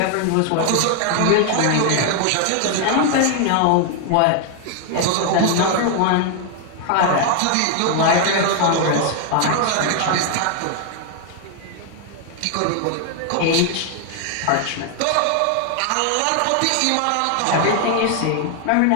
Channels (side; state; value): both; different; correlation 0.00